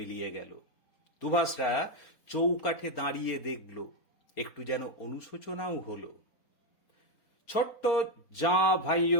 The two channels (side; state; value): right; late; 4.3 ms